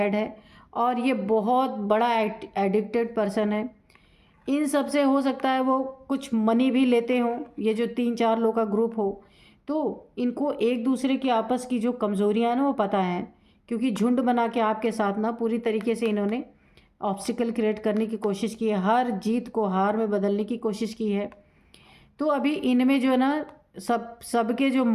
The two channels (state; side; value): identical; both; correlation 1.00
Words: है और ये बहुत बड़ा एडिक्टेड पर्सन है। इन सब से हो सकता है वो कुछ मनी भी लेते हों, ये जो 3-4 लोग का ग्रुप हो। तो इनको एक दूसरे की आपस की जो कमज़ोरियाँ हैं ना वो पता है, क्योंकि झुंड बना के आपके साथ ना पूरी तरीके से इन्होंने ऑब्स्टिकल क्रिएट करने की कोशिश की है, हर जीत को हार में बदलने की कोशिश की है। तो अभी इनमें जो है ना, सबके जो